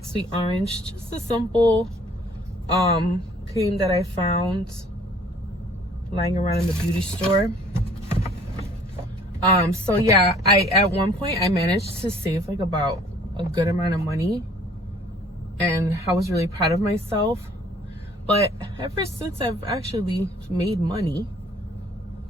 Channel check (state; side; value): normal; both; correlation 0.56